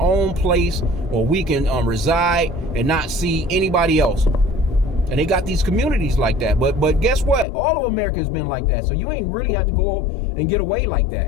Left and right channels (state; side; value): drops out; right; at 7.5 s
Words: own place where we can reside and not see anybody else. And they got these communities like that. But guess what? All of America has been like that. So you ain't really have to go and get away like